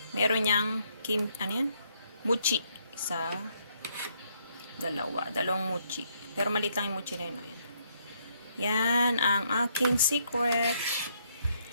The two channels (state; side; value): inverted; both; correlation -0.72